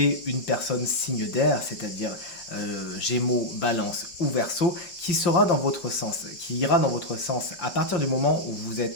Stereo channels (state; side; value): late; right; 5.8 ms